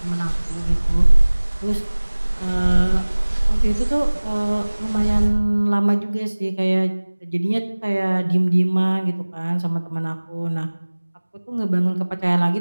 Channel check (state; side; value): inverted; both; correlation -1.00